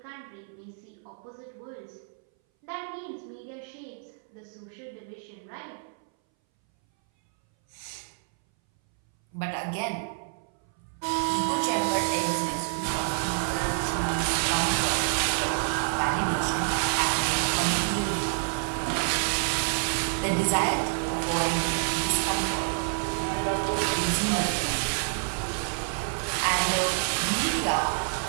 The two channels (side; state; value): left; silent; 59 dB below the other